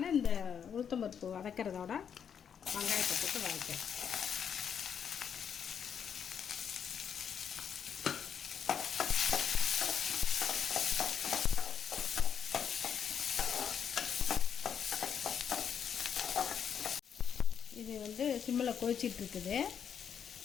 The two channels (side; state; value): right; quieter; 7.8 dB